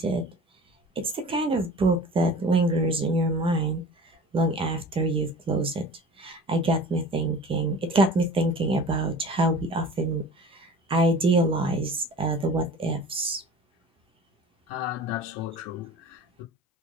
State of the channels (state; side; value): normal; both; correlation 0.40